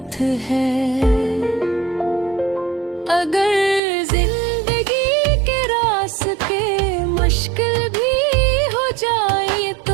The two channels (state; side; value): drops out; left; at 3.8 s